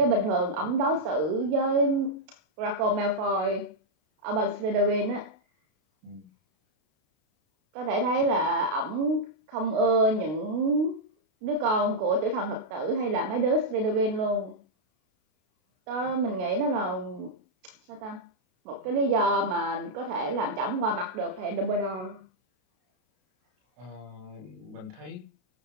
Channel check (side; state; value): left; late; 32 ms